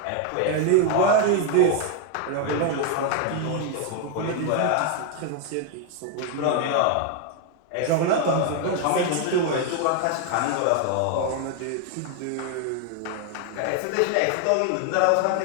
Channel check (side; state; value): both; different; correlation 0.01